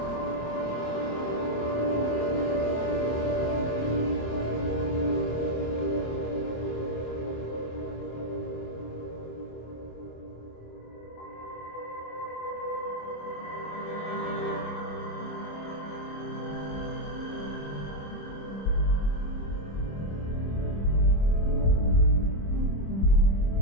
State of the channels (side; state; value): right; late; 26 ms